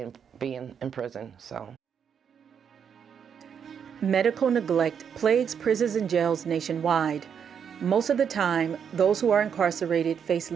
in prison, so. Medical neglect plagues prisons and jails nationwide. Most of the time, those who are incarcerated face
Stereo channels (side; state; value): left; quieter; 7.5 dB